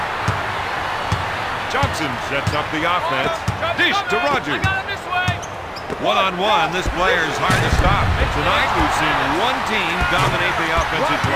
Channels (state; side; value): identical; both; correlation 1.00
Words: Johnson sets up the offense. Dish to Rogers. I got it this way. One-on-one, this player is hard to stop. Tonight, we've seen one team dominate the offensive